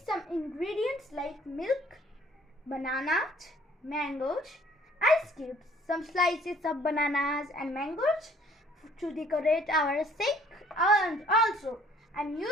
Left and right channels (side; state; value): both; normal; correlation 0.58